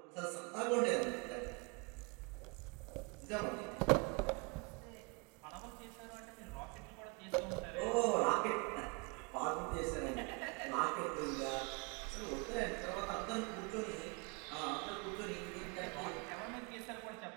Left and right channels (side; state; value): left; quieter; 31.0 dB